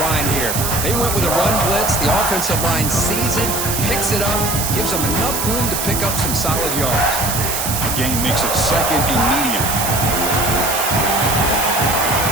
line here. They went with a run blitz. The offensive line sees it, picks it up, gives them enough room to pick up some solid yards. The gain makes it 2nd and medium.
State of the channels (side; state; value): right; noise; hiss, 2 dB below the sound